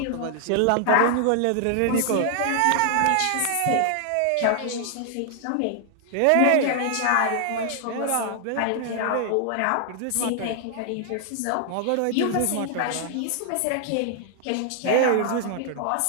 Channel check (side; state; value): both; different; correlation 0.00